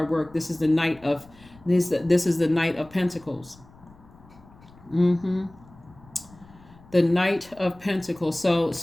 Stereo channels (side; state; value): left; noise; rumble, 25 dB below the sound